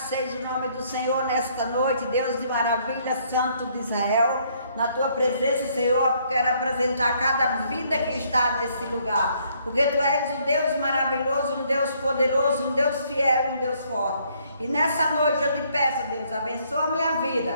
seja o nome do Senhor nesta noite, Deus de maravilha, Santo de Israel. Na Tua presença, Senhor, quero apresentar cada vida que está nesse lugar, porque Tu és um Deus maravilhoso, um Deus poderoso, um Deus fiel e um Deus forte. E nessa noite eu te peço, Deus, abençoa a minha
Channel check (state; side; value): inverted; both; correlation -0.67